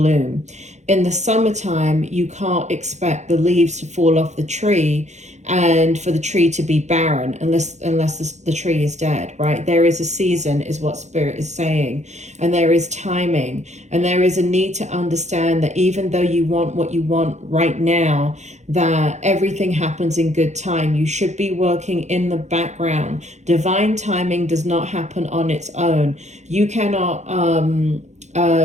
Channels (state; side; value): late; left; 0.33 ms